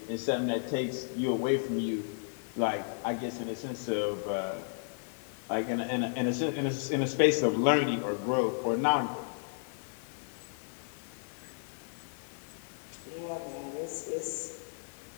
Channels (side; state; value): right; silent; digital silence